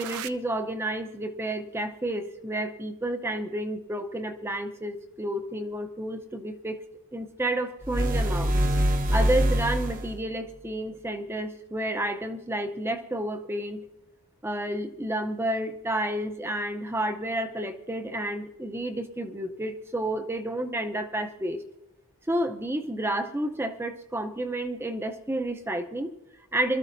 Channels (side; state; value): both; normal; correlation 0.72